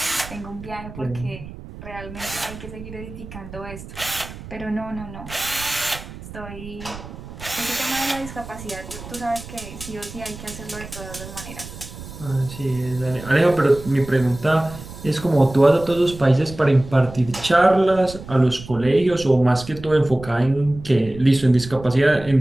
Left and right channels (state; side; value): noise; right; rumble, 14 dB below the sound